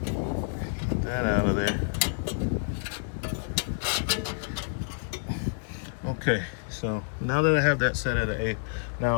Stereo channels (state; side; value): silent; right; digital silence